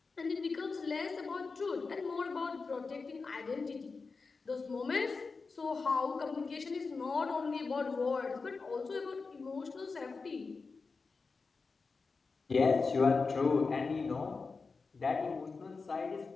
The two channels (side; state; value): right; quieter; 4.4 dB